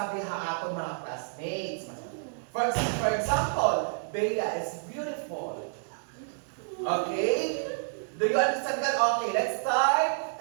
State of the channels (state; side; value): silent; left; digital silence